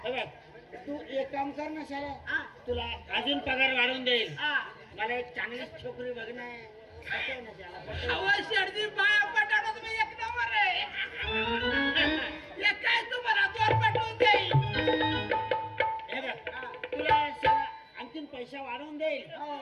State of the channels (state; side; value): identical; both; correlation 1.00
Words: हे बघ, तू एक काम कर ना शाला, तू तुला अजून पगार वाढवून देईल. हा. मला एक चांगली छोकरी बघणं आहे. पटेल ना त्याला, पटेल. अहो, शेडजी बाया पटाडा तुम्ही एक नंबर आहे. हे काय तुम्हाला दोन पाठवून देईल. हे बघ, तुला सगळं आणखीन पैसा वाढवून देईल.